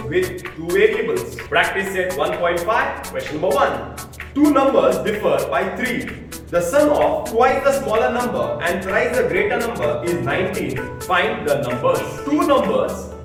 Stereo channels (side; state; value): both; identical; correlation 1.00